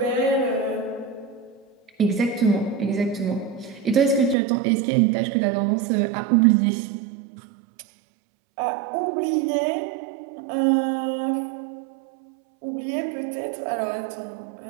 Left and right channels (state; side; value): drops out; left; at 4.4 s